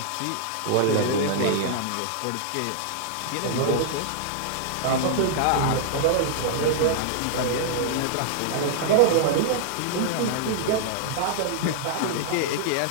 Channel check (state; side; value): different; both; correlation -0.01